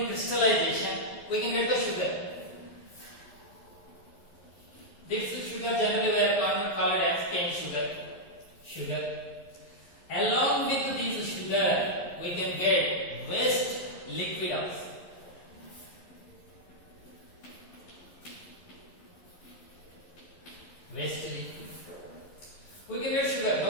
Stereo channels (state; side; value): late; right; 11 ms